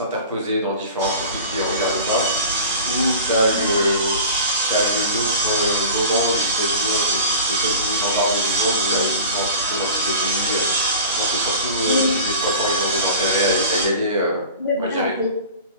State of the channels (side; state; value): both; inverted; correlation -0.39